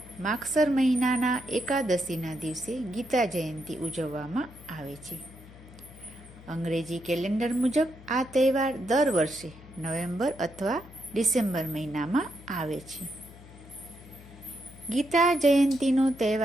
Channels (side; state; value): left; noise; hum, 20 dB below the sound